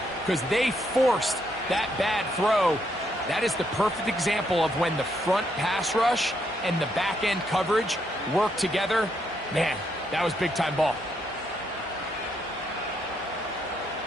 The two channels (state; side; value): normal; both; correlation 0.76